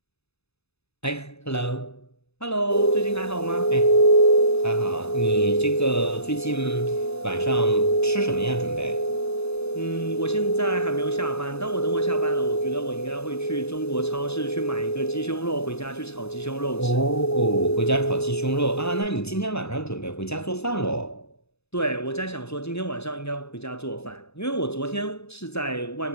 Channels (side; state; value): right; late; 0.79 ms